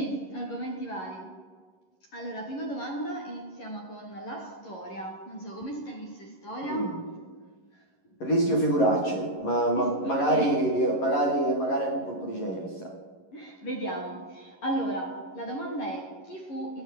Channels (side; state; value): right; late; 11 ms